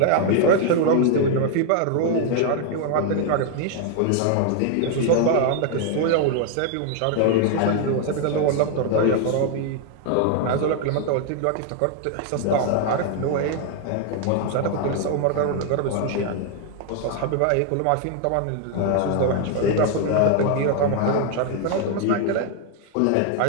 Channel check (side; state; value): both; different; correlation 0.00